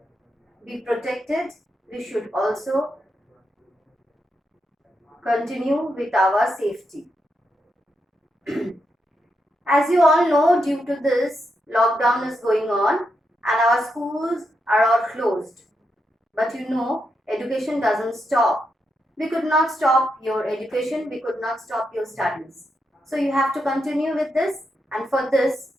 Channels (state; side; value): normal; both; correlation 0.84